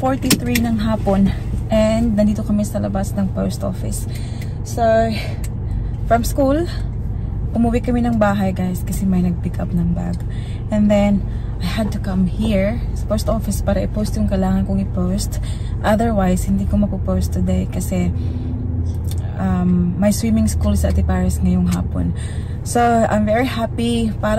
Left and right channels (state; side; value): identical; both; correlation 1.00